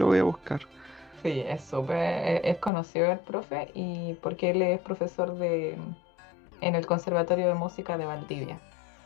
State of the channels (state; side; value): drops out; right; at 2.7 s